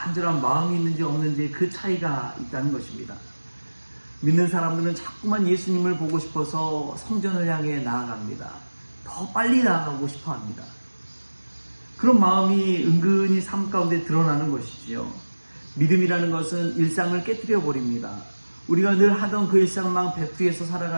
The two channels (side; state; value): both; inverted; correlation -1.00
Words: 마음이 있는지 없는지 그 차이가 있다는 것입니다. 믿는 사람들은 자꾸만 예수님을 보고 싶어서 성전을 향해 나아갑니다. 더 빨리 나아가고 싶어 합니다. 그런 마음이 은근히 삶 가운데 드러나는 것이지요. 믿음이라는 것은 일상을 깨뜨려 버립니다. 우리가 늘 하던 그 일상만 백두에서